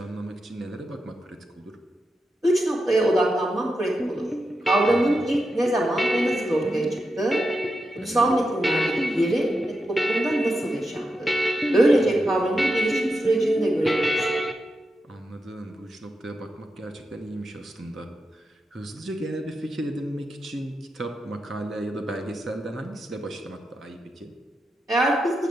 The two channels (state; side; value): normal; both; correlation 0.88